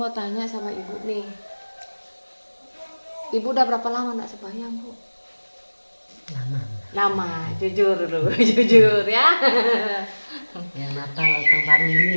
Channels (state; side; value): inverted; both; correlation -1.00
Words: tanya sama ibu nih, ibu udah berapa lama nak sembahyang Bu? Lama, jujur dulu, jujur ya. Yang Natal tahun baru